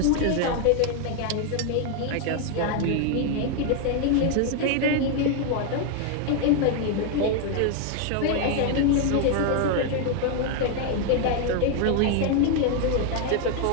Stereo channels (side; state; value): both; different; correlation 0.01